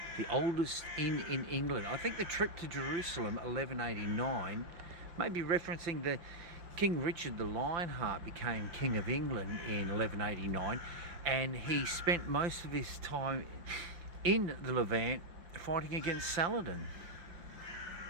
The oldest inn in England. I think the trip to Jerusalem, 1189, may be referencing the King Richard the Lionheart became King of England in 1189, and he spent most of his time in the Levant fighting against Saladin.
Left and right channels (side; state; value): left; late; 5.8 ms